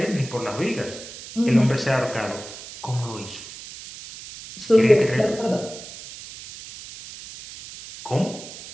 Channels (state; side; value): noise; right; hiss, 14 dB below the sound